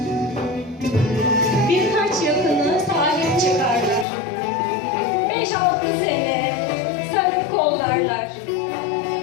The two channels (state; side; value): drops out; right; at 4.0 s